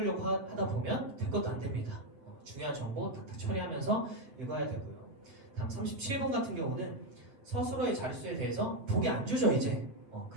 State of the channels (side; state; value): left; late; 8.3 ms